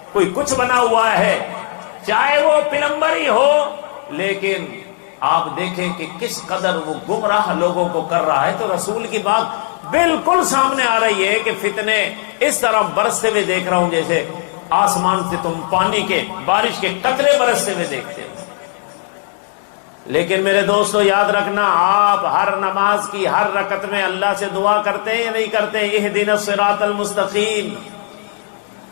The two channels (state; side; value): silent; right; 56 dB below the other